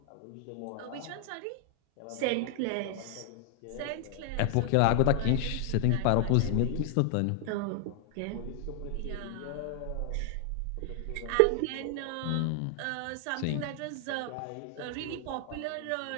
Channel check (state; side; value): different; both; correlation 0.00